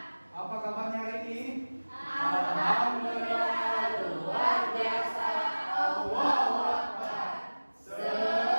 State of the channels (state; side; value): inverted; both; correlation -1.00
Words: Apa kabarnya hari ini? Alhamdulillah, luar biasa. Allahu Akbar.